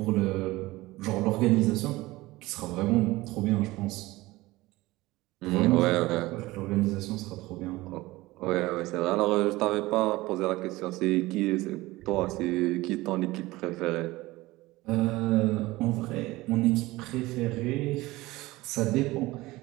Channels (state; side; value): quieter; left; 19.5 dB